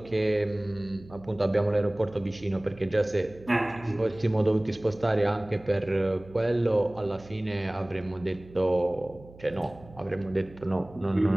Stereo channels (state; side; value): noise; right; hum, 21 dB below the sound